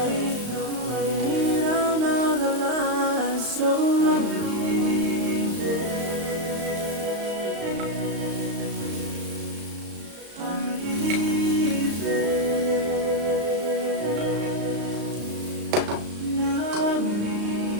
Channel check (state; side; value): late; left; 35 ms